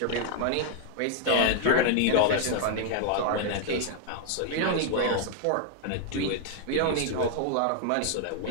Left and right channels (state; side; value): different; both; correlation 0.00